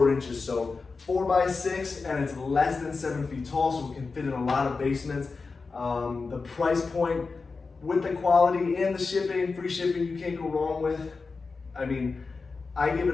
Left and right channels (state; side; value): quieter; right; 4.3 dB